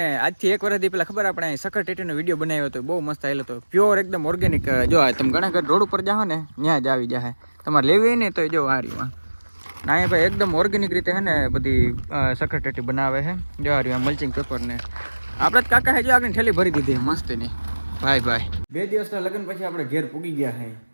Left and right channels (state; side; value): inverted; both; correlation -1.00